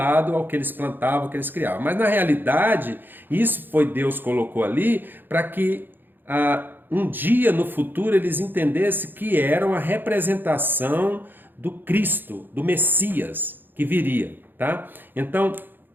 ao que eles plantavam, ao que eles criavam. Mas na realidade, isso foi Deus colocou ali para que um dia no futuro eles entendessem que era uma representação do Cristo, do Messias que viria, tá? Então,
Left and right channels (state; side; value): late; left; 0.094 ms